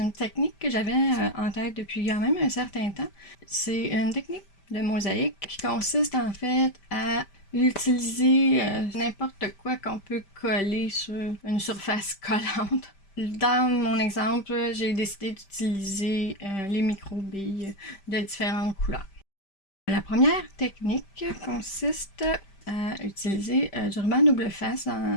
une technique que j'avais en tête depuis quand même un certain temps. C'est une technique de mosaïque qui consiste en fait à utiliser n'importe quoi qu'on peut coller sur une surface collante. Dans mon exemple, j'ai décidé d'utiliser les micro-billes de différentes couleurs. La première technique consiste à utiliser du ruban double face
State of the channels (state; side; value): late; right; 5.1 ms